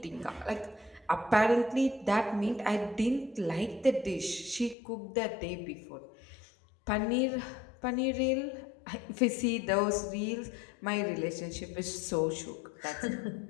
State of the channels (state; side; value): drops out; right; at 4.8 s